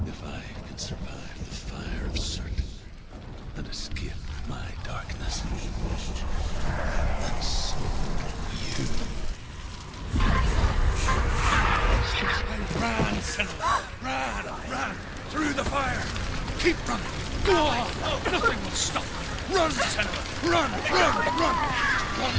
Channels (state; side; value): identical; both; correlation 1.00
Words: if I can survive the fire of certain and escape my darkness, then so you. Ran, Senua! Ran! Through the fire! Keep running! Go on! Nothing will stop! Run, Senua! Run! Run,